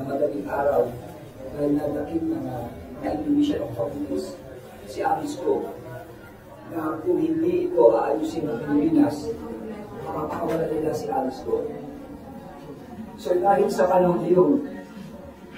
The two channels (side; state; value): both; identical; correlation 1.00